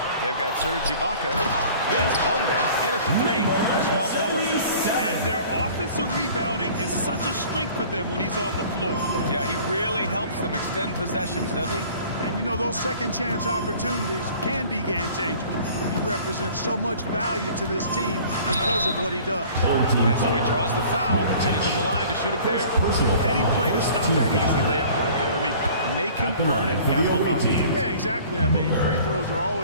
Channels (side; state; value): both; inverted; correlation -0.48